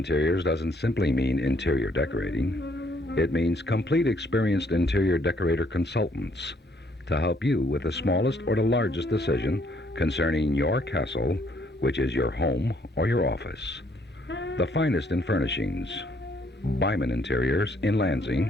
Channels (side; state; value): both; normal; correlation 0.67